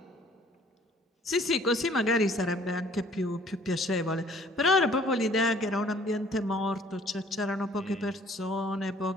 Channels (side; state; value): both; normal; correlation 0.56